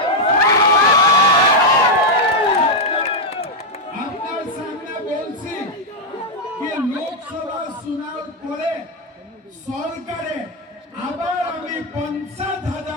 আপনার সামনে বলছি কি লোকসভা চুনাव পরে সরকারে আবার আমি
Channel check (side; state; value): both; normal; correlation 0.00